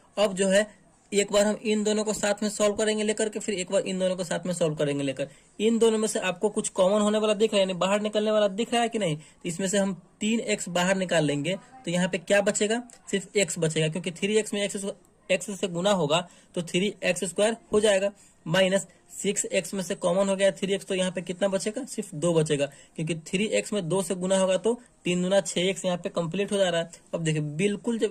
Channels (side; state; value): both; identical; correlation 1.00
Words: अब जो है एक बार हम इन दोनों को साथ में सॉल्व करेंगे लेकर के, फिर एक बार इन दोनों को साथ में सॉल्व करेंगे लेकर। इन दोनों में से आपको कुछ कॉमन होने वाला दिख रहा है, यानी बाहर निकलने वाला दिख रहा है कि नहीं। तो इसमें से हम 3x बाहर निकाल लेंगे, तो यहाँ पे क्या बचेगा, सिर्फ x बचेगा, क्योंकि 3x में x से गुना होगा तो 3x² हो जाएगा। माइनस 6x में से कॉमन हो गया 3x, तो यहाँ पे कितना बचेगा, सिर्फ 2 बचेगा, क्योंकि 3x में 2 से गुना होगा तो 3 दूना 6x यहाँ पे कंप्लीट हो जा रहा है। अब देखिए बिल्कुल